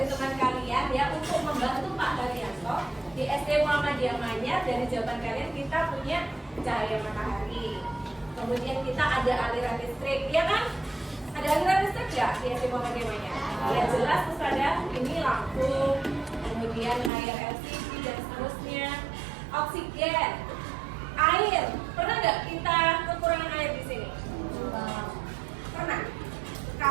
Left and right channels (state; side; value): drops out; left; at 17.1 s